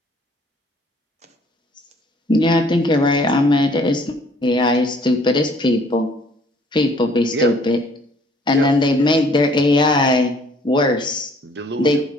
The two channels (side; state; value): both; normal; correlation 0.59